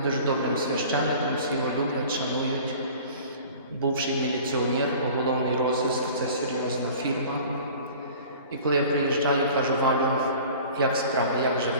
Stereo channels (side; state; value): both; inverted; correlation -0.44